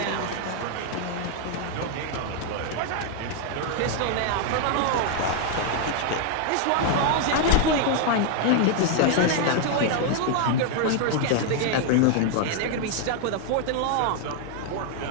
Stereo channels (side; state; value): both; different; correlation 0.00